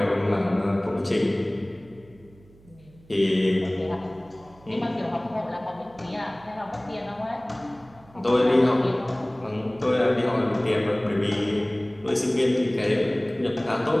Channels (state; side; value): noise; right; hum, 26 dB below the sound